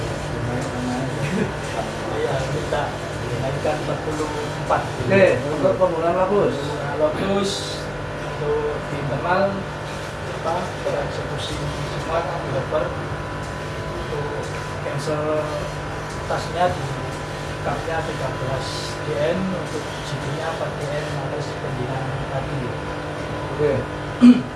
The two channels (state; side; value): identical; both; correlation 1.00